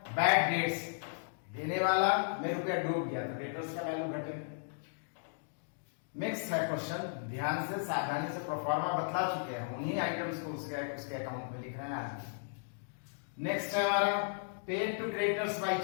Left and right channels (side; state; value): right; silent; digital silence